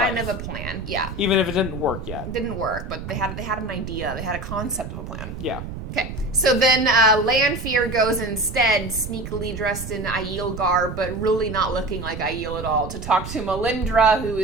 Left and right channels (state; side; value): noise; right; rumble, 8 dB below the sound